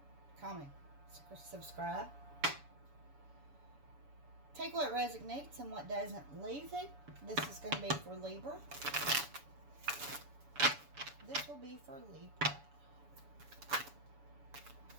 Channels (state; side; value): late; left; 7.0 ms